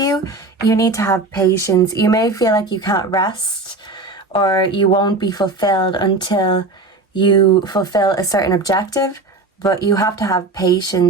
You need to have patience. You may feel like you can't rest or you won't be fulfilled until you fulfill a certain objective, but you have to have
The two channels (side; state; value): left; quieter; 3.2 dB